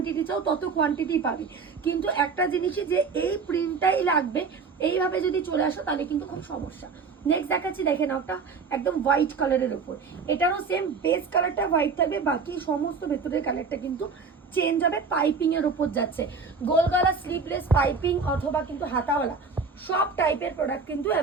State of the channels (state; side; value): quieter; left; 5.0 dB